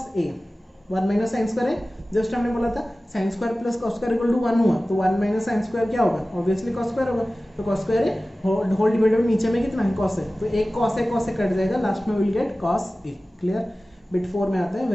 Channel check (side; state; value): both; normal; correlation 0.96